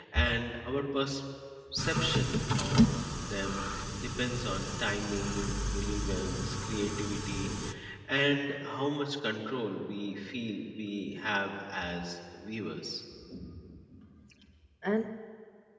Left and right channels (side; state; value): both; identical; correlation 1.00